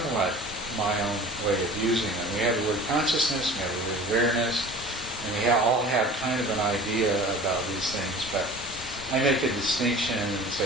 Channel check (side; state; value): both; normal; correlation 0.41